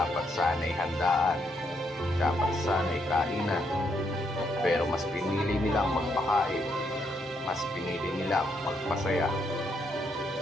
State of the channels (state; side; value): normal; both; correlation 0.76